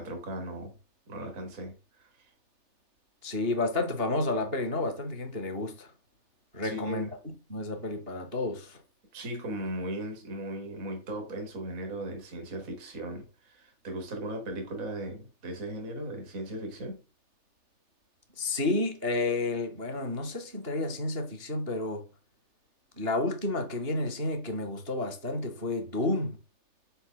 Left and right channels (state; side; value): late; left; 3.3 ms